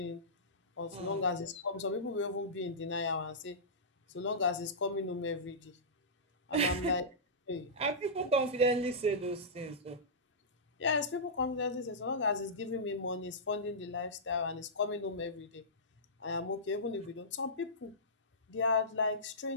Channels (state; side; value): normal; both; correlation -0.17